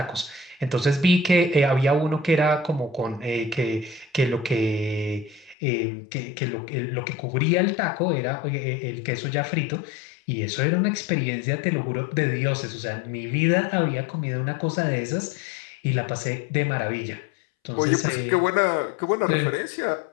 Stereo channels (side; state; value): right; drops out; at 5.6 s